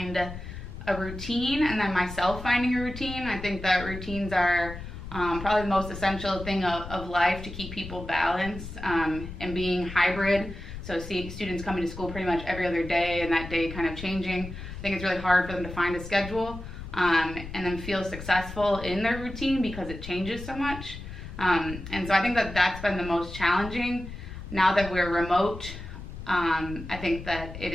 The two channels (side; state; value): left; noise; rumble, 11 dB below the sound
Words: a routine, and then myself finding a routine. I think that routines are probably the most essential thing of life to keep people balanced, and being hybrid. So seeing students coming to school pretty much every other day and that day kind of changing. I think it's really hard for them to find a schedule and then feel successful in their routine because it changes so much. And so I think that that's been the most challenging. Now that we're remote, I think that it